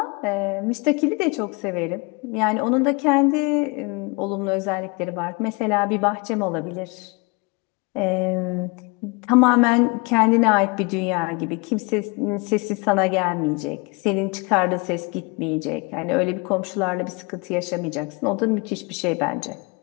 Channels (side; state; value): right; quieter; 29.4 dB